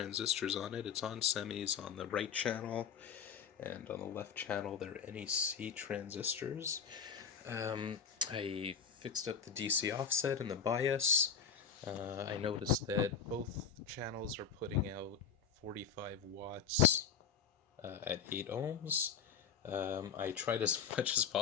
on it. It's on semis on the right channel, and on the left channel they're NEC transistors. I fixed up the DC offset and the bias. I noticed that both channels are putting out 45 watts at 8 ohms. I tried as much as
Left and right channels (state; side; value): quieter; right; 7.1 dB